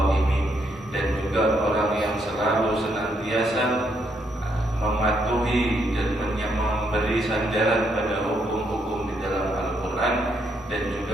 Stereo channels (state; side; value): normal; both; correlation 0.75